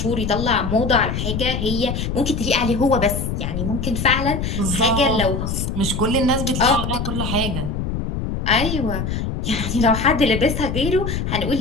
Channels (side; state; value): left; noise; rumble, 3 dB below the sound